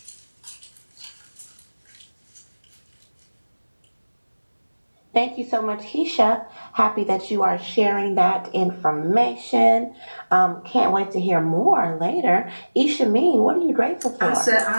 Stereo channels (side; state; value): both; inverted; correlation -1.00